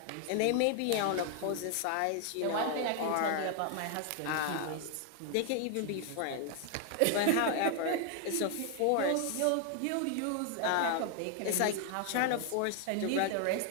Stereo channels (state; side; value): different; both; correlation 0.00